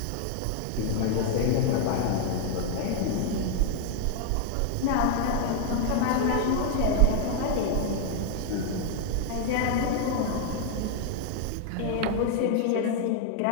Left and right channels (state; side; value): different; both; correlation 0.00